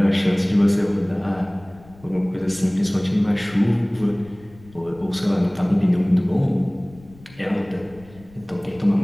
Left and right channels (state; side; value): noise; left; rumble, 23 dB below the sound